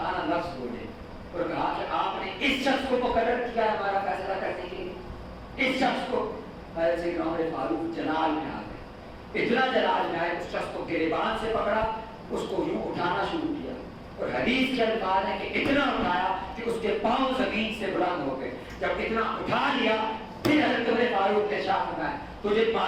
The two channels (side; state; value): both; identical; correlation 1.00